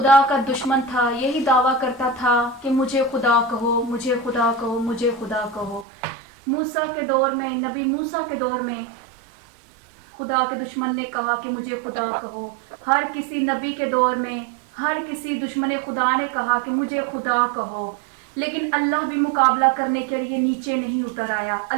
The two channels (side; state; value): left; drops out; at 5.9 s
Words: کا دشمن تھا، یہی دعویٰ کرتا تھا کہ مجھے خدا کہو، مجھے خدا کہو، مجھے خدا کہو۔ موسیٰ کے دور میں، نبی موسیٰ کے دور میں خدا کے دشمن نے کہا کہ مجھے خدا کہو۔ ہر کسی نبی کے دور میں ہر کسی دشمن خدا نے کہا کہ مجھے خدا کہو، لیکن اللہ بھی مقابلہ کرنے کے لیے نیچے نہیں اتر آیا۔